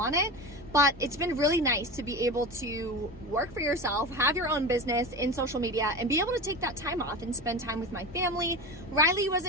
it, but it's been really nice to be able to work for yourself, have your own business in social media, and be able to take that time off and spend time with my family. Riley was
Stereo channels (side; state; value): both; normal; correlation 0.26